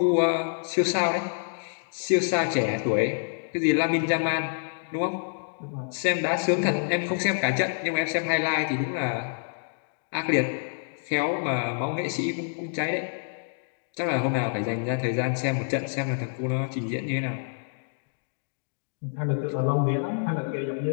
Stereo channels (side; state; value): right; silent; digital silence